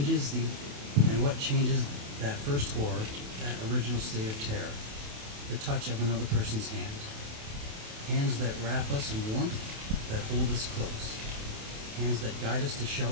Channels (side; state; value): left; late; 28 ms